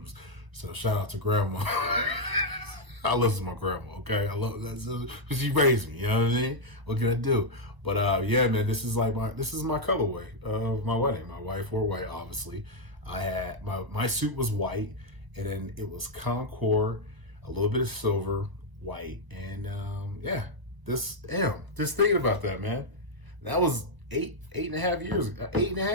So shout out to grandma. I listen to my grandma, okay? I love that because she raised me, you know what I mean? What can I do? But yeah, man, this is my colorway of my wedding. My wife wore white, obviously. I had my suit was white, and then it was Concord, a little bit of silver, white, and yeah. Just thinking about that, man. That was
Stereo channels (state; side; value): late; left; 1.2 ms